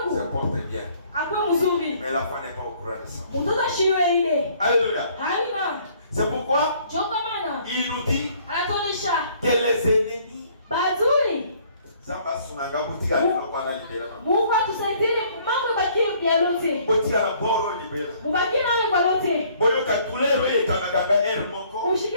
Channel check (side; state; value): both; inverted; correlation -0.60